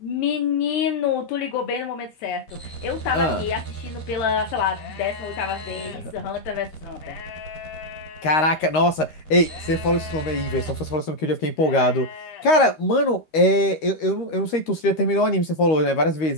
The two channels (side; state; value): right; late; 13 ms